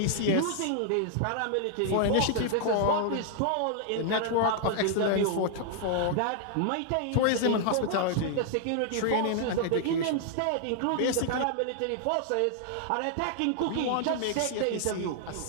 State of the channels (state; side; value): different; both; correlation -0.01